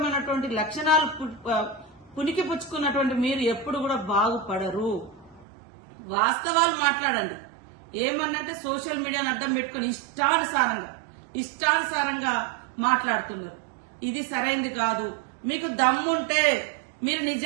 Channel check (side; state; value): left; drops out; at 5.5 s